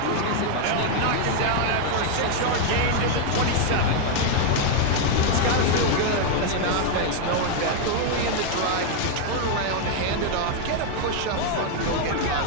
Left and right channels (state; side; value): different; both; correlation 0.00